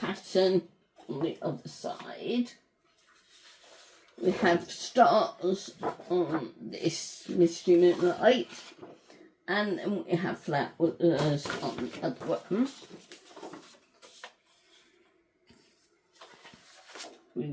on the other side. We have stars on this Misty Moonlight, and then we have flowers on the other one. We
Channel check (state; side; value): identical; both; correlation 1.00